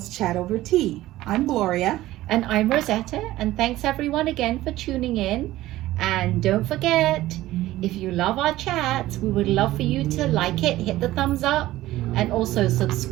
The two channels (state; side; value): quieter; left; 16.0 dB